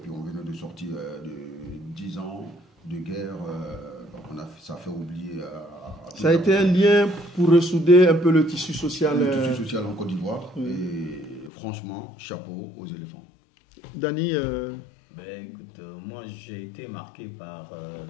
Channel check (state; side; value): drops out; right; at 11.5 s